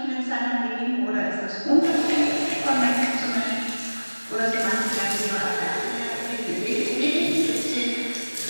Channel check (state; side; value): inverted; both; correlation -1.00